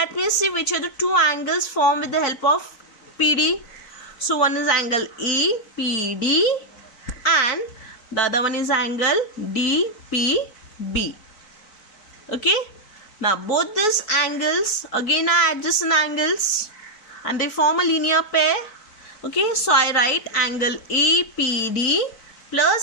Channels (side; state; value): right; late; 4.5 ms